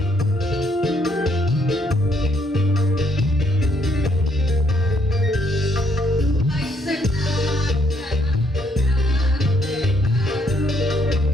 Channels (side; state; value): both; normal; correlation 0.70